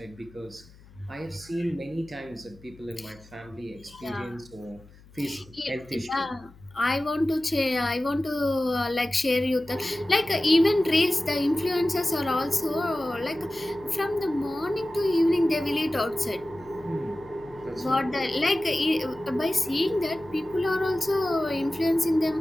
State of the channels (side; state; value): left; noise; hum, 24 dB below the sound